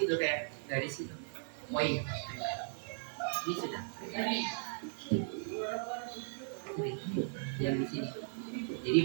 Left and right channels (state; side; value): silent; left; digital silence